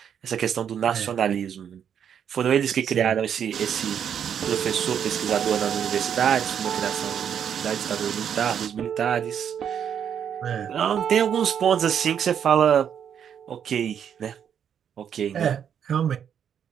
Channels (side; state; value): left; quieter; 8.4 dB